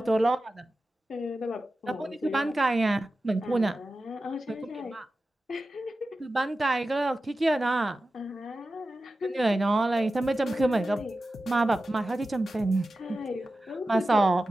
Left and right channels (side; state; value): both; normal; correlation 0.93